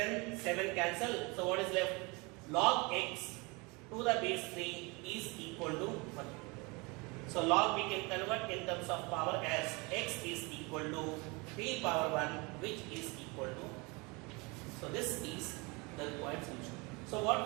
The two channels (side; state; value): left; quieter; 27.4 dB